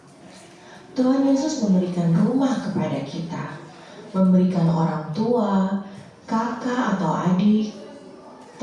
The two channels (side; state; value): both; identical; correlation 1.00